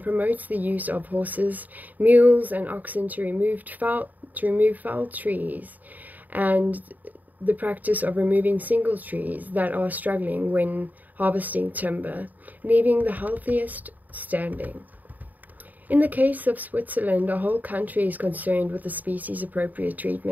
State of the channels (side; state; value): left; late; 0.082 ms